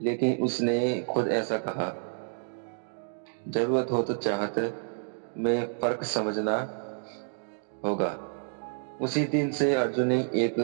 लेकिन उसने खुद ऐसा कहा, जरूरत हो तो चाहत में फर्क समझना होगा। उसी दिन से अर्जुन ने एक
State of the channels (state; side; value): silent; left; digital silence